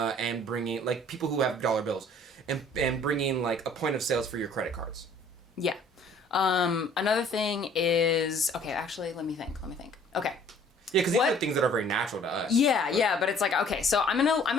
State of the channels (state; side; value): normal; both; correlation 0.55